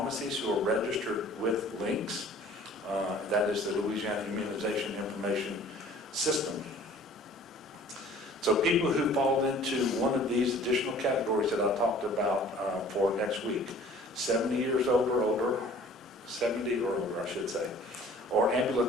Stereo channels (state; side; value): normal; both; correlation 0.50